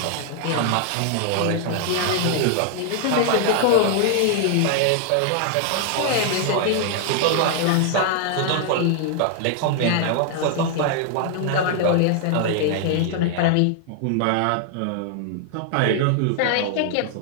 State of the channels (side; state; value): both; different; correlation 0.00